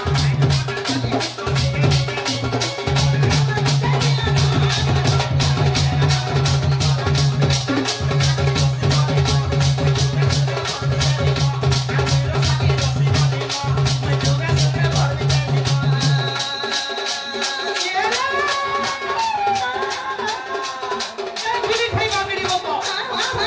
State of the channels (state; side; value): identical; both; correlation 1.00